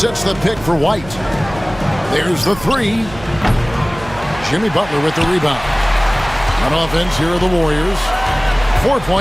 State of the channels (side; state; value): right; noise; hum, 16 dB below the sound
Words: the pick for White. There's the 3. Jimmy Butler with the rebound. On offense, here are the Warriors.